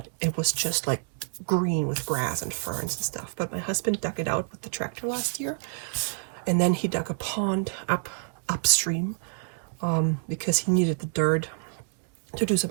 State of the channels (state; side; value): silent; left; digital silence